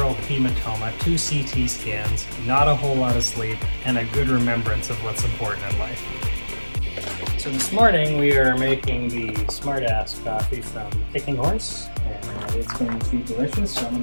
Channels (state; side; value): inverted; both; correlation -1.00